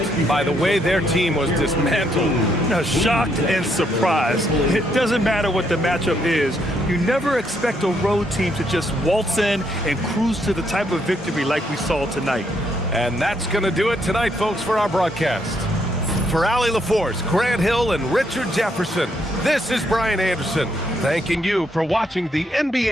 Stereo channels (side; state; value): both; normal; correlation 0.74